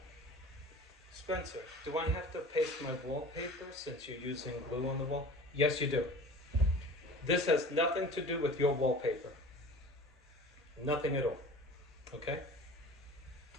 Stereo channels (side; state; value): both; normal; correlation 0.40